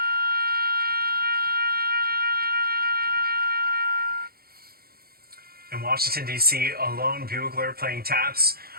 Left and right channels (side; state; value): left; late; 0.44 ms